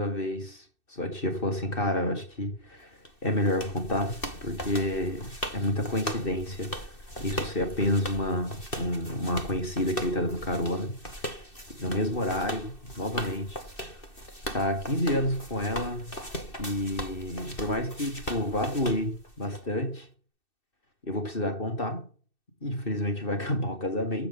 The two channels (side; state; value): right; late; 2.6 ms